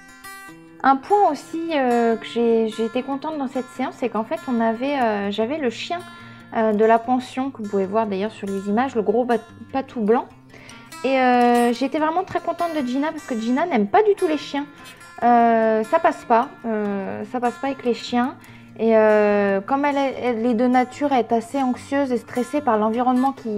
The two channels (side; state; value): both; identical; correlation 1.00